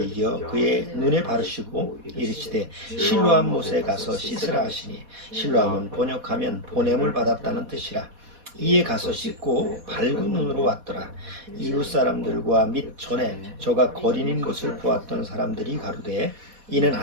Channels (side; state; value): left; late; 4.1 ms